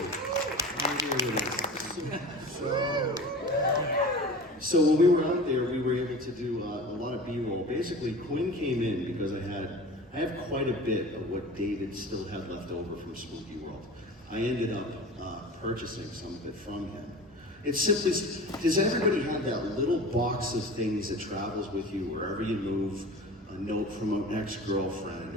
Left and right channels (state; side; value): normal; both; correlation 0.36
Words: Right here with us. So when we were out there, we were able to do a lot of B-roll. Basically, Quinn came in because I have quite a bit of what David still had left over from Spooky World. I ended up purchasing some of it from him. It's simply, does everybody have that little box of things that travels with you wherever you move? A note from an